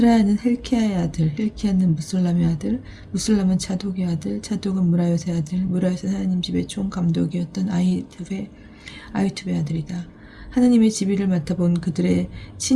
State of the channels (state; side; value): identical; both; correlation 1.00